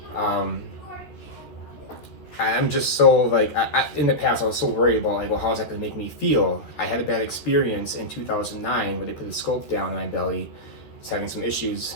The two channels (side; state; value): right; late; 13 ms